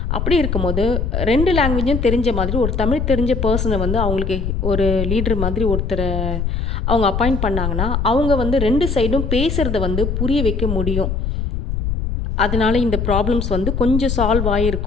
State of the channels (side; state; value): left; noise; rumble, 1 dB below the sound